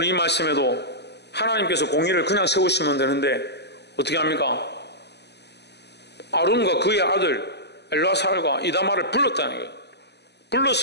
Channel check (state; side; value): late; right; 0.49 ms